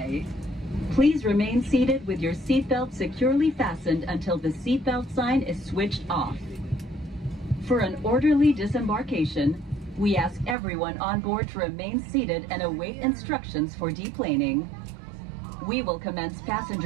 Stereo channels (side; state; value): left; drops out; at 10.6 s